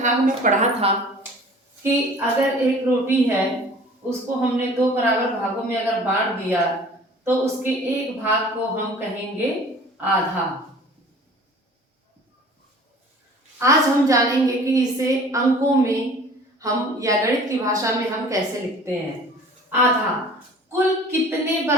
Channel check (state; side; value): normal; both; correlation 0.46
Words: में पढ़ा था कि अगर एक रोटी है उसको हमने दो बराबर भागों में अगर बांट दिया तो उसके एक भाग को हम कहेंगे आधा। आज हम जानेंगे कि इसे अंकों में हम या गणित की भाषा में हम कैसे लिखते हैं। आधा कुल कितने